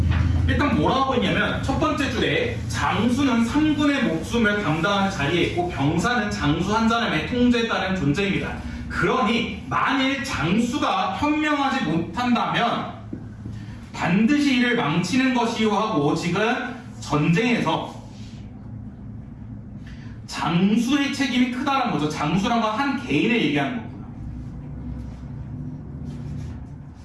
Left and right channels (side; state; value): both; identical; correlation 1.00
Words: 일단 뭐라고 하고 있냐면 첫 번째 줄에 장수는 3군의 목숨을 감당하는 자리에 있고 병사는 장수 한 사람의 통제에 따른 존재입니다. 그러니 만일 장수가 현명하지 못한다면 반드시 이를 망치는 것이요 하고 지금 전쟁에서 장수의 책임이 크다는 거죠. 장수란 건 한 개인을 얘기하는 거구나.